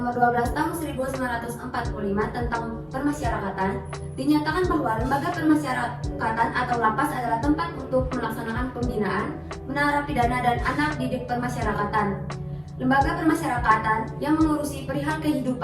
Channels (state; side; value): identical; both; correlation 1.00